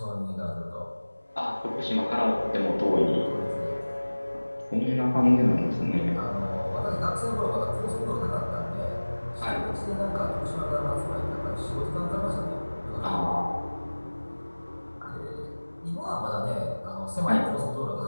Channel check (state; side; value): inverted; both; correlation -1.00